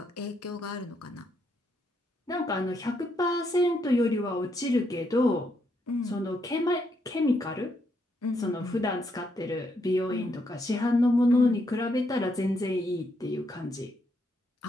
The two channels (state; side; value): normal; both; correlation 0.77